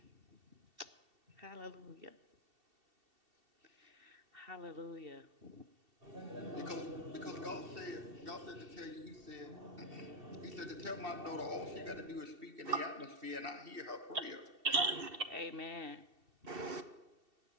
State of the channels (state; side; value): late; left; 2.7 ms